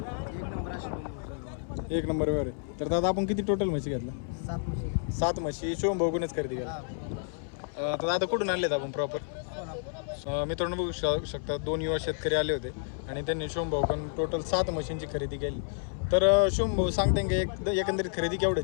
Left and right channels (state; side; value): silent; right; 58 dB below the other